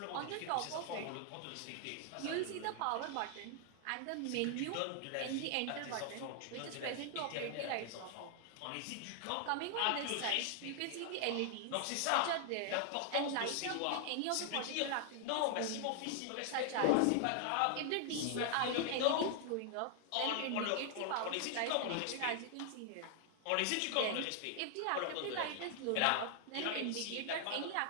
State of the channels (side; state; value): both; different; correlation 0.00